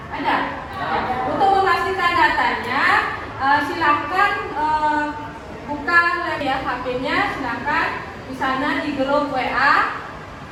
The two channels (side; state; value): both; identical; correlation 1.00